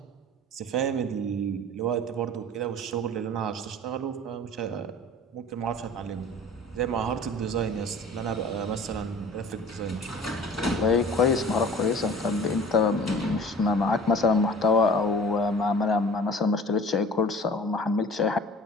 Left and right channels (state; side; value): normal; both; correlation 0.44